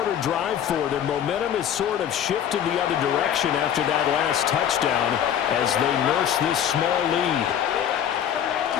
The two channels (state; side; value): quieter; right; 9.5 dB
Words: drive for them. Momentum has sort of shifted the other direction after that last touchdown as they nurse this small lead.